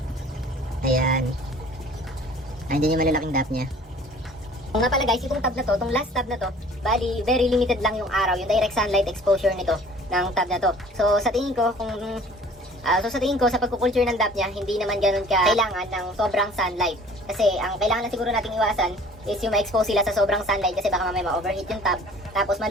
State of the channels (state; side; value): normal; both; correlation 0.50